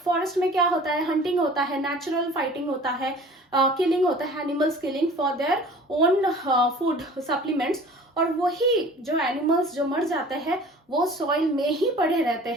फॉरेस्ट में क्या होता है, हंटिंग होता है, नेचुरल फाइटिंग होता है, किलिंग होता है, animals killing for their own food supplements. और वही जो एनिमल्स जो मर जाते हैं वो सॉइल में ही पड़े रहते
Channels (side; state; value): both; normal; correlation 0.45